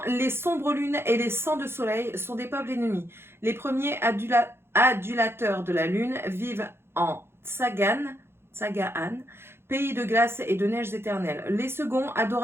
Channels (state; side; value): late; left; 0.12 ms